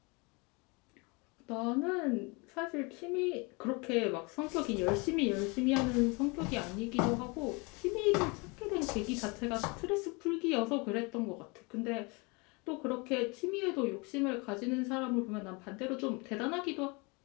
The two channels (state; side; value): quieter; right; 28.8 dB